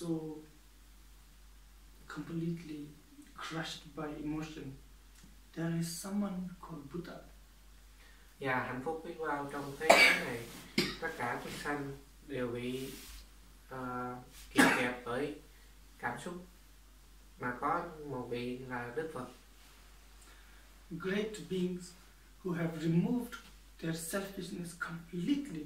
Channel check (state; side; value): identical; both; correlation 1.00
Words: completely crushed by emotion, there is someone called Buddha. Và hạnh phúc biết bao trong thế giới này, tất cả chúng sanh đều bị kìm kẹp bởi cảm xúc, mà có một vị là Đức Phật. Great beings who have removed their selfishness